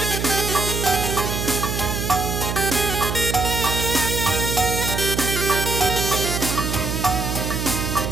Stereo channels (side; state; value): right; noise; hum, 2 dB below the sound